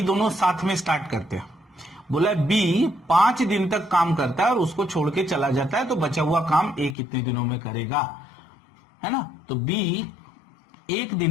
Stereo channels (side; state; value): right; drops out; at 7.0 s